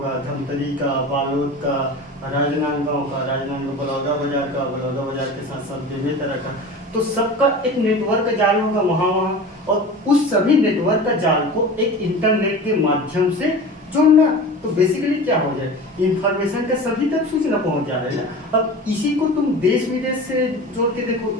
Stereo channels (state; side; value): normal; both; correlation 0.35